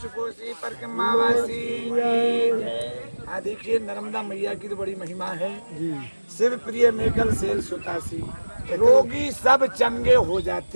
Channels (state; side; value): inverted; both; correlation -1.00